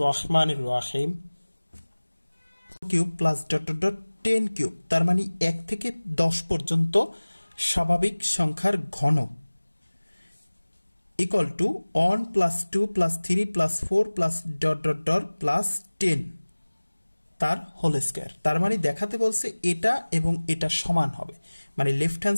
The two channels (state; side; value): inverted; both; correlation -1.00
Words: रहीम cube plus dot dot dot 10 cube তার মানে 1 থেকে 10 পর্যন্ত স্বাভাবিক সংখ্যার ঘন equal to 1 plus 2 plus 3 plus 4 plus dot dot dot plus 10 তার হোল স্কয়ার। তার মানে দেখাতে বলছে এটা এবং এটা সমান হবে, মানে লেফট